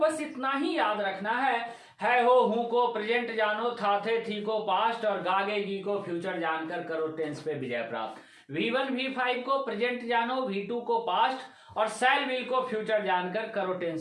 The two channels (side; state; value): both; identical; correlation 1.00